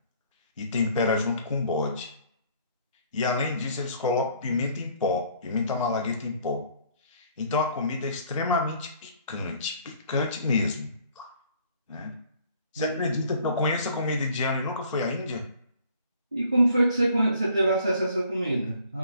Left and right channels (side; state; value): both; inverted; correlation -0.58